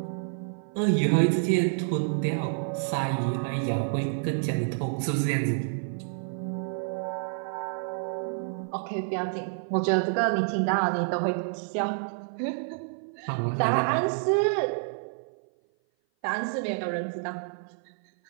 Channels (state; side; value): silent; left; 56 dB below the other